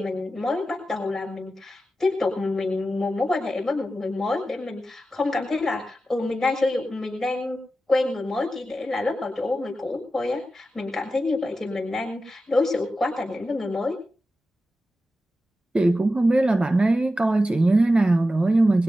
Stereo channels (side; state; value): both; normal; correlation 0.92